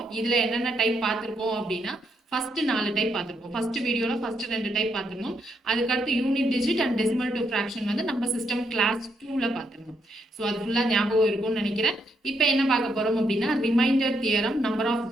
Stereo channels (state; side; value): normal; both; correlation 0.77